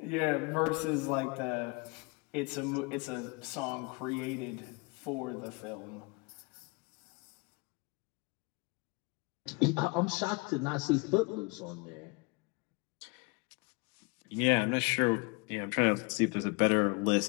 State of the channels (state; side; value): quieter; right; 29.0 dB